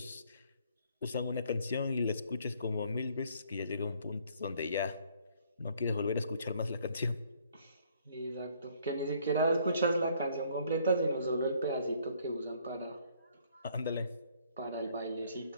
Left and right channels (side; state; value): both; inverted; correlation -0.63